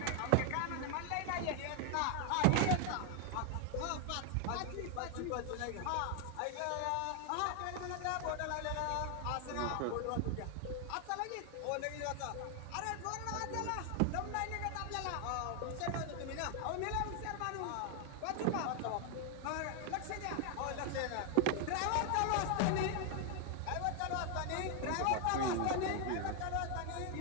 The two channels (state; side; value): different; both; correlation 0.00